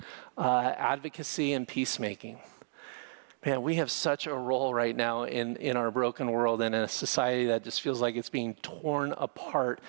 advocacy and peacemaking. Man, we have such a role right now in our broken world and in a society that just feels like it's being torn apart,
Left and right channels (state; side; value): silent; left; digital silence